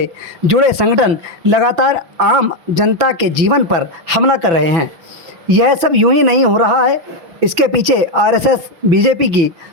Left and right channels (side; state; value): left; late; 6.0 ms